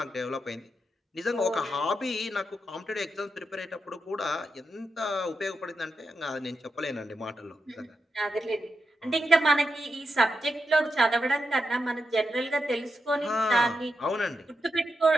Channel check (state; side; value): normal; both; correlation 0.86